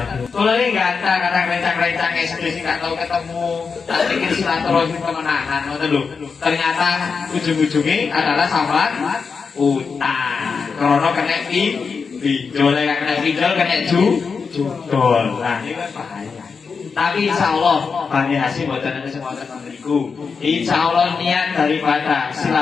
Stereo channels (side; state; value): right; quieter; 5.3 dB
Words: kalau ini nggak ada kadang rencang-rencang kayak sendiri nggak tahu ketemu, tak pikir silaturahim kemenangan, ternyata ujung-ujungnya adalah sambat utang, krono kena pinjol, kena pinjol, kena judol, nah ini kan bahaya. Tapi insya Allah Bani Hasyim buatan ada semua teman-temanku. Insya Allah niat daripada